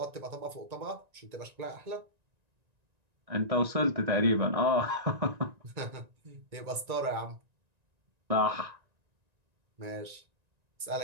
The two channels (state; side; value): late; left; 1.9 ms